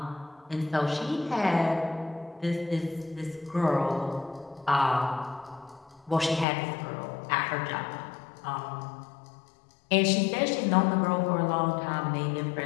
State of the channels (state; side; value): drops out; right; at 6.5 s